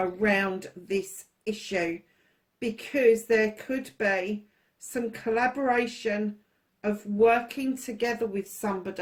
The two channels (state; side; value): identical; both; correlation 1.00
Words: this issue, because there could be some collaboration of working together with